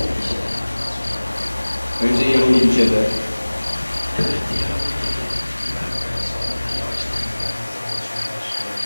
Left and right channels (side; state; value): both; inverted; correlation -1.00